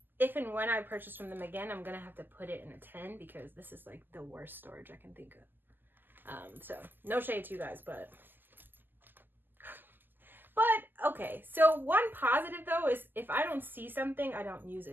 if and when I purchase from them again, I'm gonna have to put it in a 10 because this is like the worst storage I can think of. So no shade to you guys, but okay. So one positive though is if I don't see something, I don't use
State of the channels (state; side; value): late; left; 0.091 ms